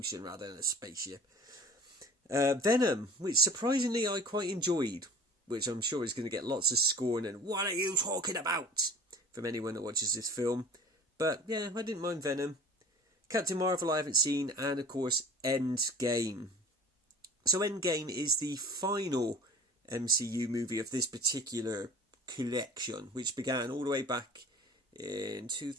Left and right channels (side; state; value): both; normal; correlation 0.44